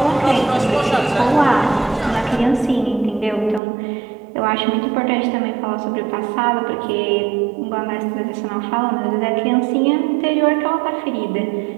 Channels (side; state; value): left; drops out; at 3.6 s